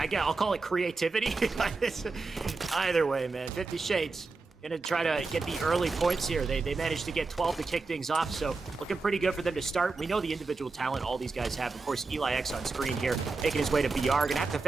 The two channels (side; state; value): left; quieter; 3.9 dB